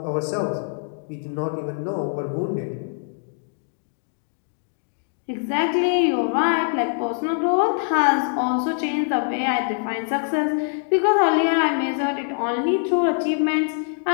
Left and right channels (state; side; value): silent; right; digital silence